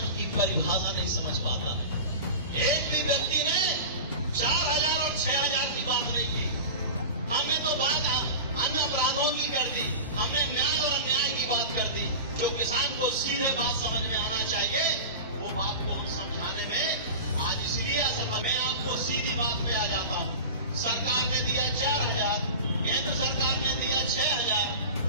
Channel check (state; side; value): inverted; both; correlation -0.30